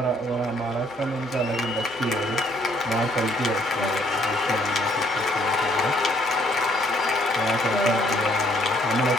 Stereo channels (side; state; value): right; noise; hum, 26 dB below the sound